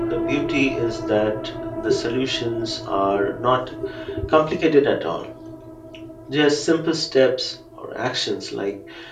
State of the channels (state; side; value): identical; both; correlation 1.00